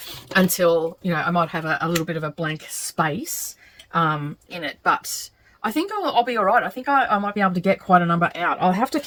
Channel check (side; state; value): both; identical; correlation 1.00